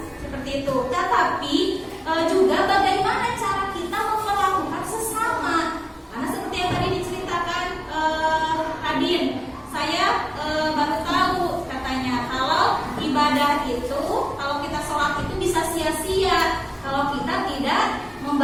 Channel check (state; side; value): identical; both; correlation 1.00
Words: seperti itu. Tetapi juga bagaimana cara kita memperlakukan sesama. Karena seperti yang tadi diceritakan Adin, saya baru tahu katanya kalau ibadah itu, kalau kita sholat itu bisa sia-sia kalau kita tidak